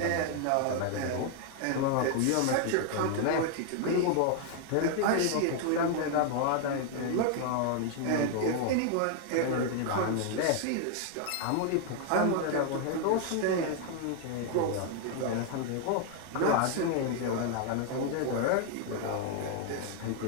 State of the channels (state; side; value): different; both; correlation 0.00